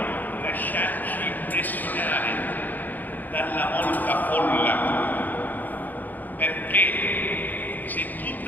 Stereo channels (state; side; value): late; right; 0.084 ms